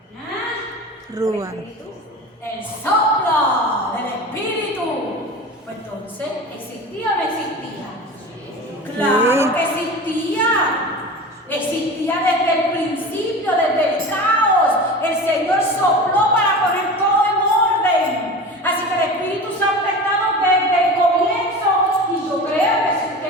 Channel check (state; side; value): normal; both; correlation 0.32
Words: ¿Ah? Rúa. El soplo del Espíritu. Pues entonces, ¿existía o no existía? Claro que existía. Existía desde el principio, desde el caos. El Señor sopló para poner todo en orden. Así que el Espíritu Santo ha estado desde el comienzo. Y yo creo que si